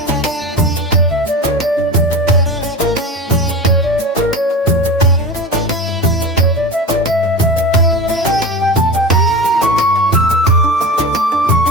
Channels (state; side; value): normal; both; correlation 0.29